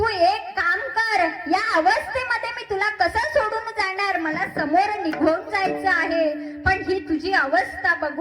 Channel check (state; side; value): identical; both; correlation 1.00